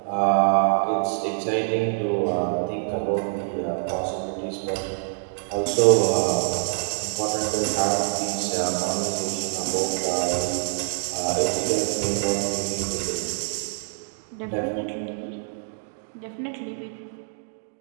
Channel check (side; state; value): left; silent; digital silence